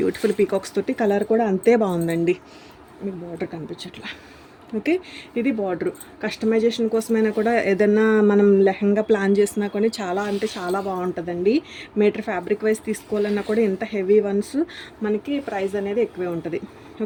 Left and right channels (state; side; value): identical; both; correlation 1.00